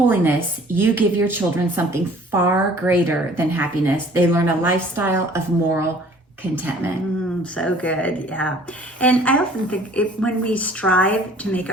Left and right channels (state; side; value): normal; both; correlation 0.52